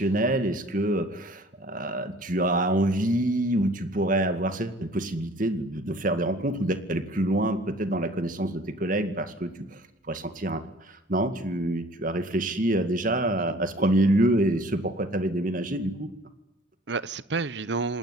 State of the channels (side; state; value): both; normal; correlation 0.50